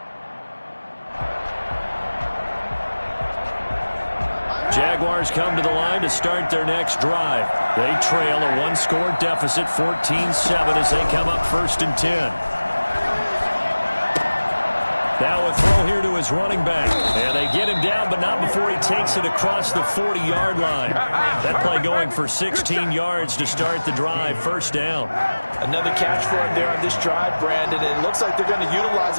Jaguars come to the line to start their next drive. They trail a 1-score deficit, 14-7, as they come up 1st and 10. Now a throw here to his running back. And they get him down, but not before he takes it across the 40-yard line. That play going for 16 yards to start the drive, 1st down. Another catch for him there on this drive, Brandon. And it looks like they're going to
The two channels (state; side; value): inverted; both; correlation -1.00